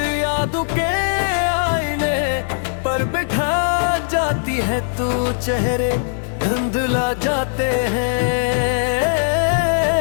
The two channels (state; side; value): silent; right; digital silence